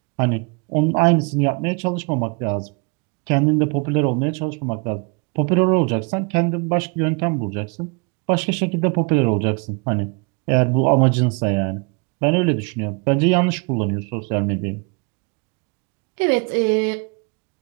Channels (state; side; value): quieter; left; 32.6 dB